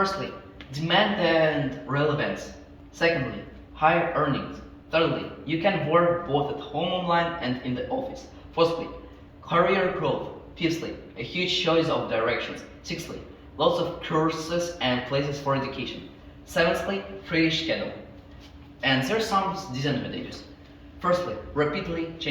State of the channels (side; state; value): both; identical; correlation 1.00